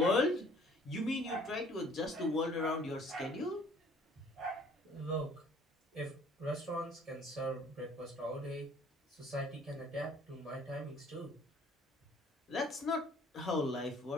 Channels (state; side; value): normal; both; correlation 0.56